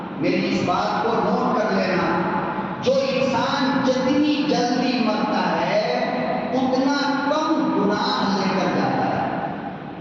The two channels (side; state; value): both; identical; correlation 1.00